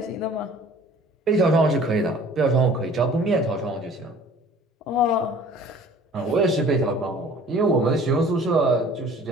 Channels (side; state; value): both; normal; correlation 0.49